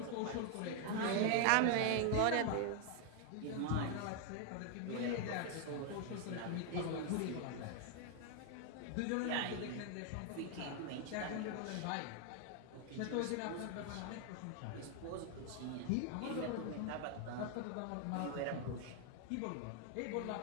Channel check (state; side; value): different; both; correlation 0.00